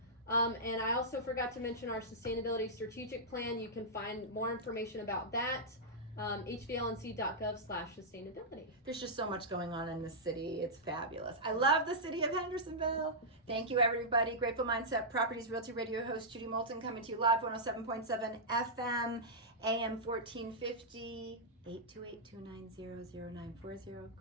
And I also forgot to mention our Sustainability Strategic Plan. You can find more information about that. hvlnc.gov/sustainability. There's just so much going on in this city. It's fabulous. I love the city of Hendersonville. Thank you, everybody. Grateful Mindset Properties Realty Radio host Judy Moulton coming to you live, 107.7 FM, AM 1450, 828-290-0940,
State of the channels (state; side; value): normal; both; correlation -0.10